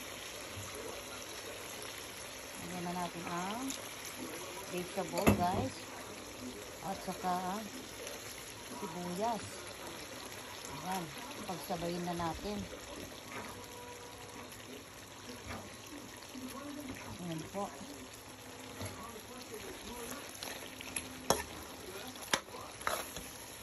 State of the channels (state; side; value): identical; both; correlation 1.00